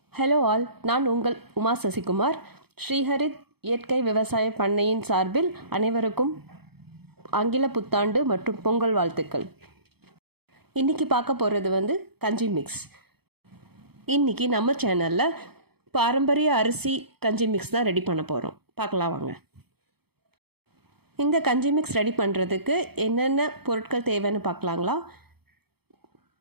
Hello all, நான் உங்கள் உமா சசிகுமார். ஸ்ரீஹரித் இயற்கை விவசாய பண்ணையின் சார்பில் அனைவருக்கும் ஆங்கில புத்தாண்டு மற்றும் பொங்கல் வாழ்த்துக்கள். இன்றைக்கி பார்க்க போகிறது கஞ்சி மிக்ஸ். இன்றைக்கி நம்ம சேனலில் பாரம்பரிய அரிசி கஞ்சி மிக்ஸ் தான் ரெடி பண்ண போகிறோம். பார்க்கலாம் வாங்க. இந்த கஞ்சி மிக்ஸ் ரெடி பண்ணுறதுக்கு என்னென்ன பொருட்கள் தேவைன்னு பார்க்கலாங்களா?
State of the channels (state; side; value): late; left; 0.97 ms